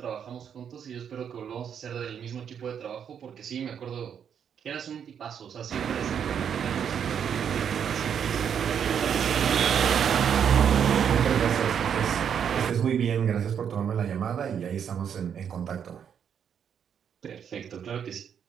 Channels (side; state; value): left; quieter; 8.1 dB